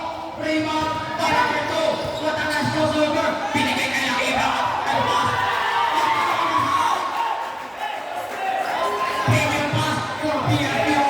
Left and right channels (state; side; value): identical; both; correlation 1.00